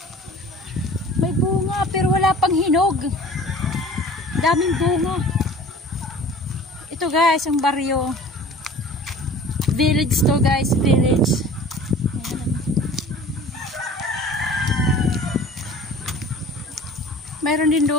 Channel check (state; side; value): normal; both; correlation 0.45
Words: May bunga pero wala pang hinog. Daming bunga. Ito guys, ang baryo. Village to guys, village. Mayroon din